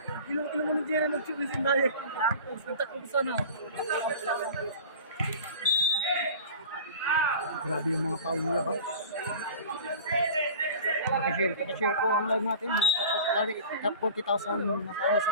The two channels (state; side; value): inverted; both; correlation -0.38